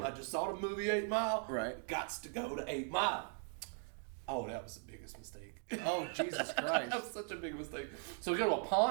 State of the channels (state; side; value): silent; left; 51 dB below the other